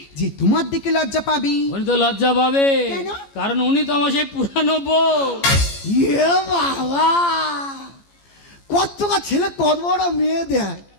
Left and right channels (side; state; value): right; late; 14 ms